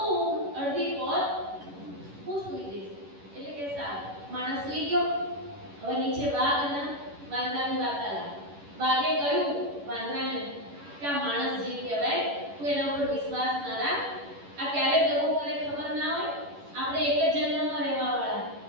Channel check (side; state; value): left; late; 11 ms